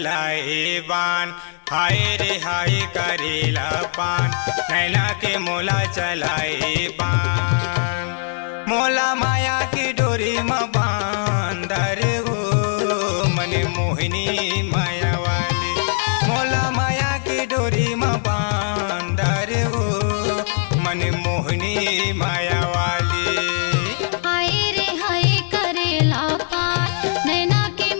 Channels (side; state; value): right; silent; digital silence